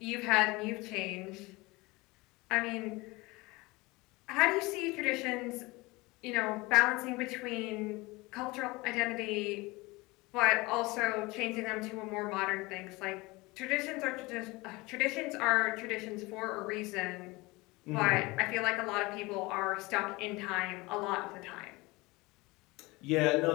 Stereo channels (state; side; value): quieter; right; 22.9 dB